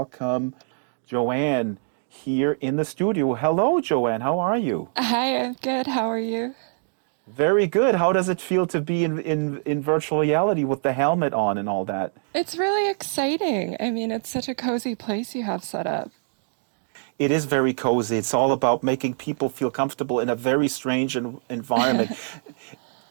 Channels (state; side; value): silent; left; 62 dB below the other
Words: Joanne here in the studio. Hello, Joanne. How are you? Hi, I'm good. How are you? Very good. How does it feel to be in virtual reality with the helmet on and all that? It's really exciting. I mean, it's such a cozy place you have set up. It is very cozy. It's all about making people feel comfortable in a very strange environment.